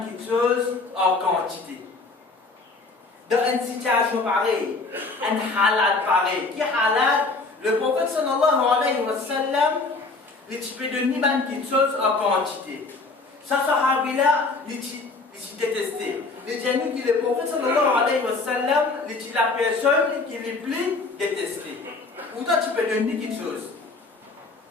chose en quantité. Dans une situation pareille, un halal pareil, qui halal, le prophète sallallahu alayhi wa sallam, tu peux donner quelque chose en quantité. Ça, sahabi-là, il détesté. Les gens qui le prophète sallallahu alayhi wa sallam, la personne qui est plus détestée. Ou toi, tu peux donner quelque chose.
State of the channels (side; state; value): right; quieter; 3.7 dB